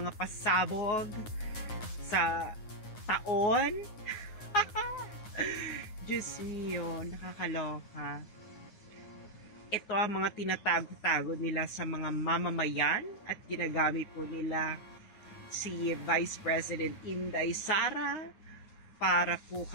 pasabog sa taon. Diyos mio, nakakaloka. Ito ang mga tinatago-tago nila sa mga mamamayan at ginagamit po nila si Vice President Inday Sara para po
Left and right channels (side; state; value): right; late; 9.7 ms